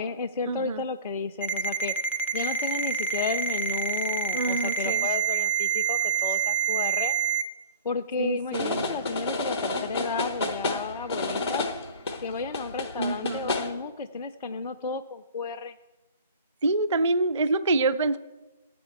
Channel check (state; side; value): inverted; both; correlation -0.38